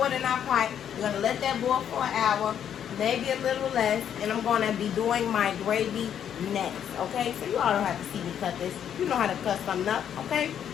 it in our pot. We're going to let that boil for an hour, maybe a little less. And I'm going to be doing my gravy next, okay? So you all don't have to see me cut this. You know how to cut something up, okay?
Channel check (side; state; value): right; quieter; 9.2 dB